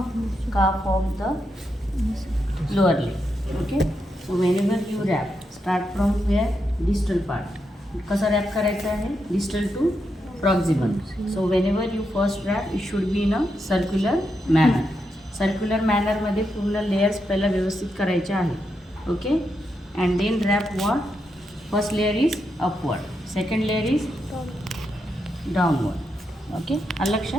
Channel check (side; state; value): both; normal; correlation 0.84